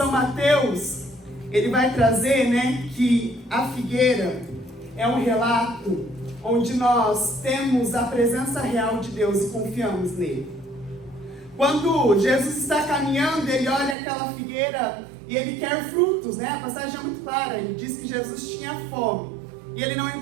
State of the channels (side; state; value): left; drops out; at 14.0 s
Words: Mateus, ele vai trazer, que a figueira é um relato onde nós temos a presença real de Deus e confiamos nele. Quando Jesus está caminhando, ele olha aquela figueira e ele quer frutos, A passagem é muito clara, ele diz que Jesus tinha fome e ele não